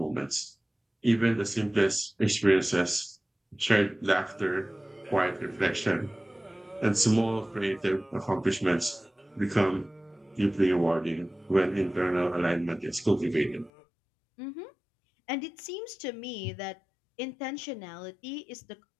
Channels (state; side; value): drops out; right; at 13.7 s